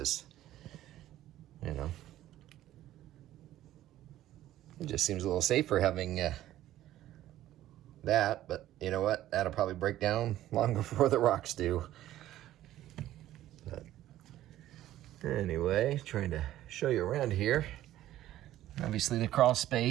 you know, it just seems a little safer having that, but you know what? That'll probably break down long before the rocks do. But anyway, trying to show you around here. Obviously the crawl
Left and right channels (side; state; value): left; quieter; 13.7 dB